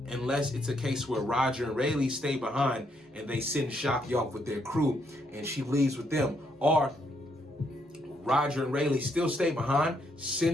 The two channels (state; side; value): normal; both; correlation 0.74